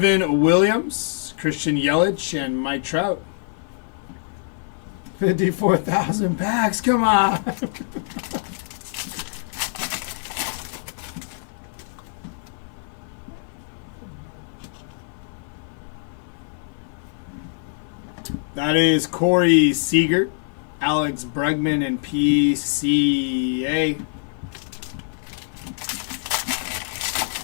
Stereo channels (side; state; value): right; silent; 56 dB below the other